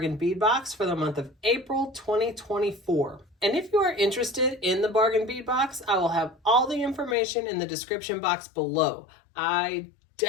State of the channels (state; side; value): drops out; right; at 7.2 s